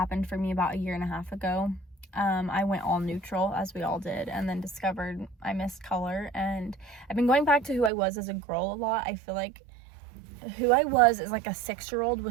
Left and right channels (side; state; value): left; drops out; at 7.9 s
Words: for me about 1.5 years ago. I went all neutral, as we all did, and then discovered I missed color. And I've been going back to who I was as a girl a lot. I feel like who I was as like a 6-year-old